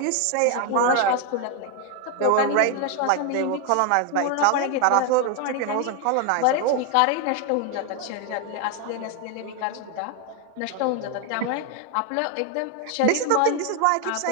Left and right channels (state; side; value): different; both; correlation 0.01